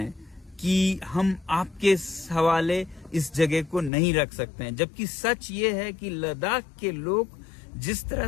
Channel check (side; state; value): right; drops out; at 3.9 s